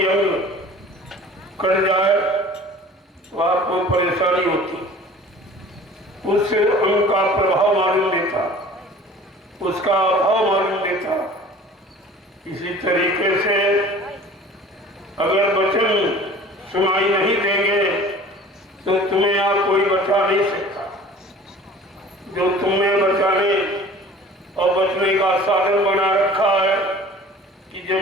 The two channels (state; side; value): normal; both; correlation 0.45